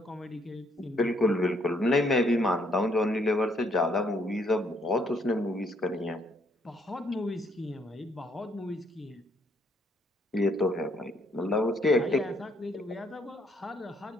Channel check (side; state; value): both; normal; correlation 0.69